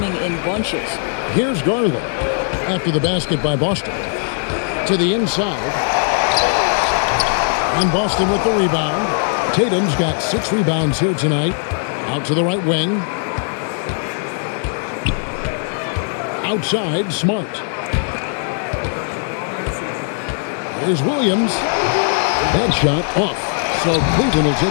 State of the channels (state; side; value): silent; right; 58 dB below the other